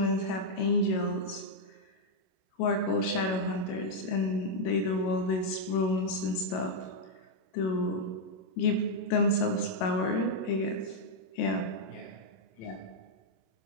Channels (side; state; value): right; late; 27 ms